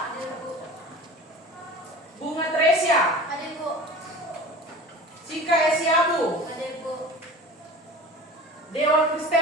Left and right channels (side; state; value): both; normal; correlation 0.38